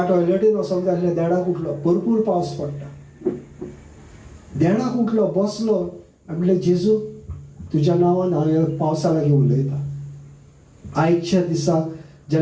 टॉयलेटीन वचोंक जाय आसलें, देडाक उठलो, भरपूर पावस पडटा. देडाक उठलो, बसलो आनी म्हणलें जेजू तुज्या नांवान हांव ह्या पावसा लागीं उलयता. आयच्या दिसा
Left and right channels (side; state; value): both; identical; correlation 1.00